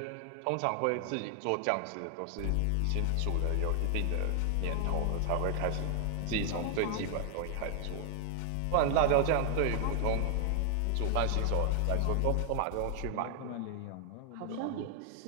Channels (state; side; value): different; both; correlation 0.00